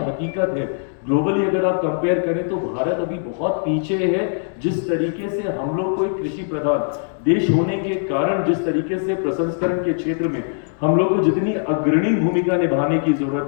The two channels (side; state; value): right; silent; digital silence